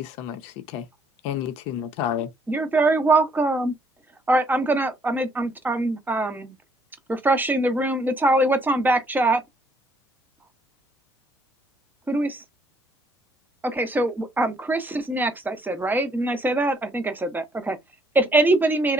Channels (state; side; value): normal; both; correlation 0.67